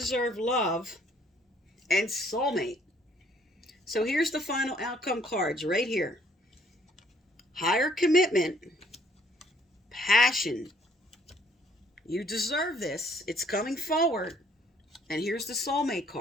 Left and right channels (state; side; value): normal; both; correlation 0.63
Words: love, and soulmate. So here's the final outcome cards right here. Higher commitment, passion, you deserve this, it's coming forward, and here's the soulmate